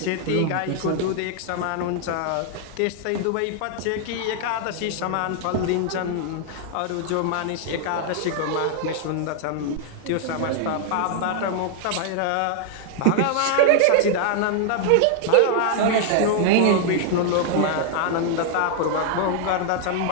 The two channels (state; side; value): different; both; correlation 0.00